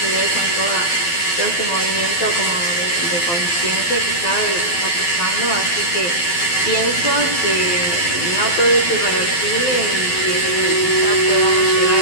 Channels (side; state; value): right; late; 12 ms